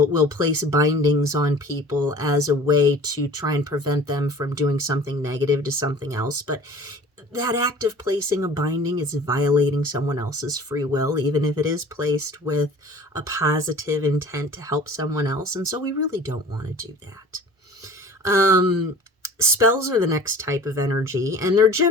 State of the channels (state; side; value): normal; both; correlation 0.44